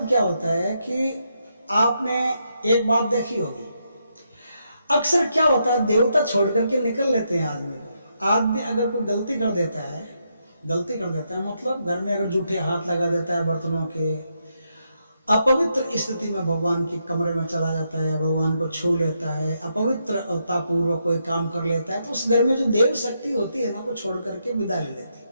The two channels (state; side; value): inverted; both; correlation -0.80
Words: क्या होता है कि आपने एक बात देखी होगी, अक्सर क्या होता है, देवता छोड़ करके निकल लेते हैं आदमी को। आदमी अगर कोई गलती कर देता है मतलब घर में अगर जूठे हाथ लगा देता है बर्तनों के, अपवित्र स्थिति में भगवान के कमरे में चला जाता है, भगवान को छू लेता है, अपवित्रता पूर्वक कोई काम कर लेता है, तो उस घर में जो देव शक्ति होती है ना, वो छोड़ करके विदा ले लेती है।